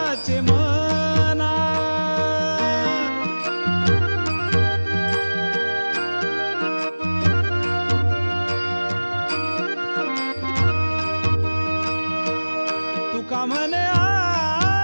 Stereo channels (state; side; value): inverted; both; correlation -1.00